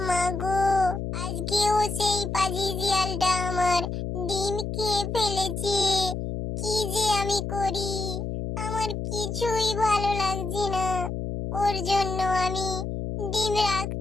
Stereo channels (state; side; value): noise; left; hum, 4 dB below the sound